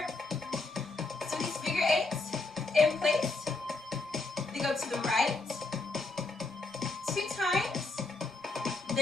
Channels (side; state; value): right; quieter; 3.5 dB